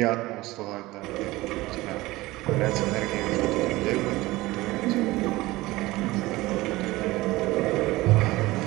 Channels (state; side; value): quieter; left; 19.4 dB